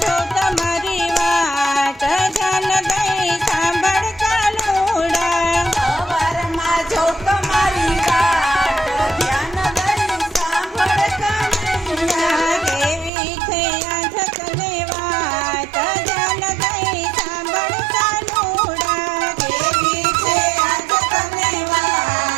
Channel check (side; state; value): left; drops out; at 13.1 s